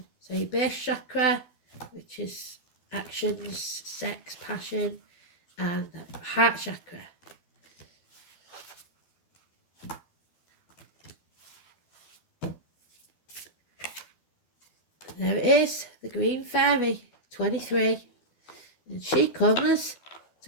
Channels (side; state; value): right; late; 12 ms